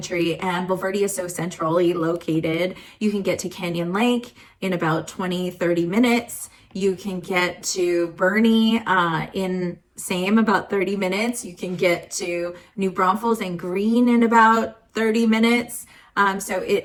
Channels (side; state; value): both; identical; correlation 1.00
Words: and Bulverde is so centrally located. You can get to Canyon Lake in about 20-30 minutes. You can get to Bernie in about 30 minutes. You can get to New Braunfels and Green in about 30 minutes. So it,